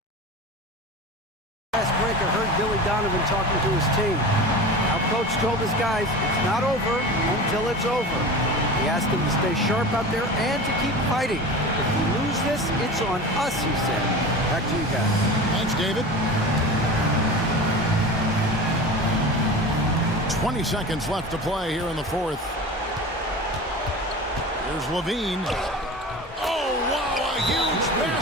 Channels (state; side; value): normal; both; correlation 0.32